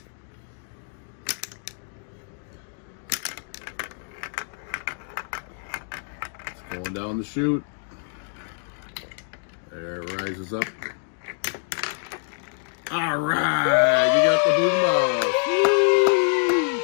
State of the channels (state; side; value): silent; right; 60 dB below the other